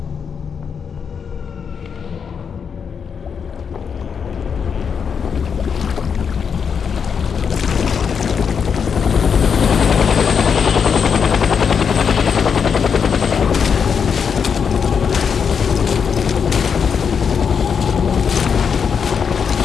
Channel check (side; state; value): right; quieter; 6.6 dB